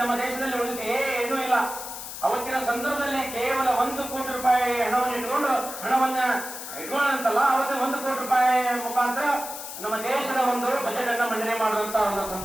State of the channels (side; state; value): left; noise; hiss, 9 dB below the sound